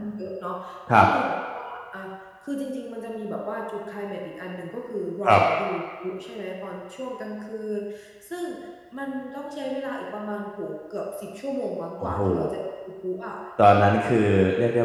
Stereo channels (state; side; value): identical; both; correlation 1.00